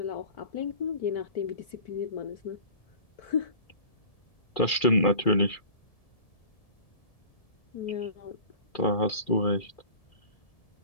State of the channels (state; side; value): late; right; 2.4 ms